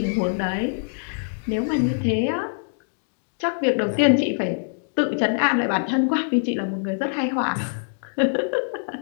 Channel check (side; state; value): right; silent; digital silence